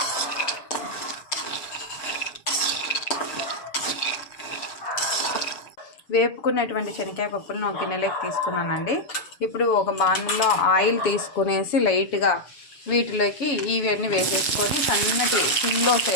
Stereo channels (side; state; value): right; late; 6.9 ms